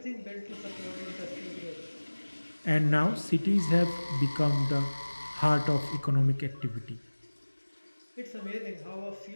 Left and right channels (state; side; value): inverted; both; correlation -1.00